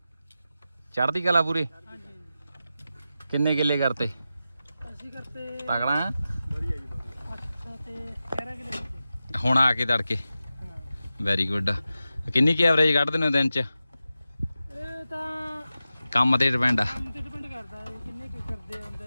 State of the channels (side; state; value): both; inverted; correlation -0.93